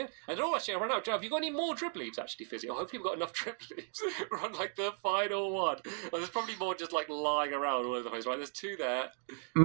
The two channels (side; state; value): left; silent; 54 dB below the other